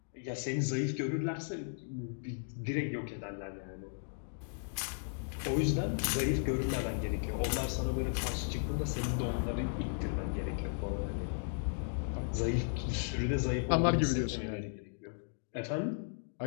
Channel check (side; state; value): right; silent; digital silence